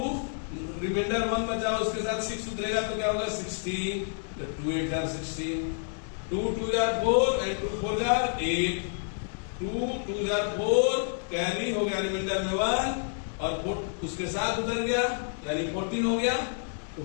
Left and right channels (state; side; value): silent; right; digital silence